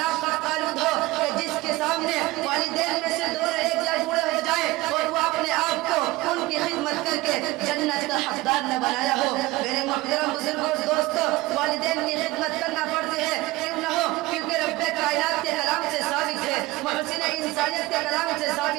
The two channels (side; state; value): left; quieter; 19.4 dB